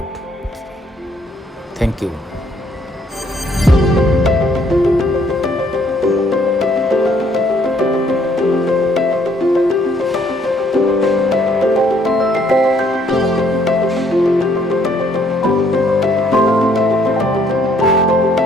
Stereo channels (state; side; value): normal; both; correlation 0.66